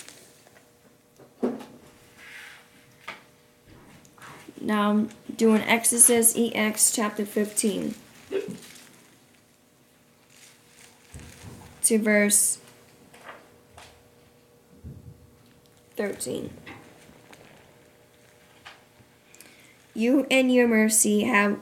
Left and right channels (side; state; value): both; identical; correlation 1.00